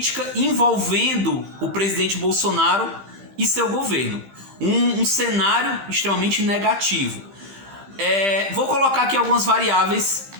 envolvendo o presidente Bolsonaro e seu governo. Um cenário extremamente negativo. Vou colocar aqui algumas variáveis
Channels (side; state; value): left; late; 15 ms